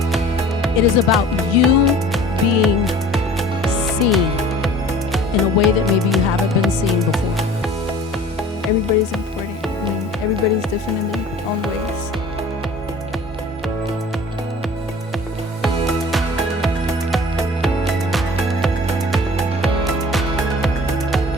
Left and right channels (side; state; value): both; normal; correlation 0.45